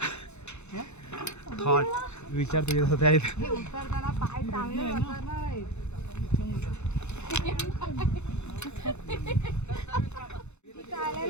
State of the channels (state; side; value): late; right; 0.82 ms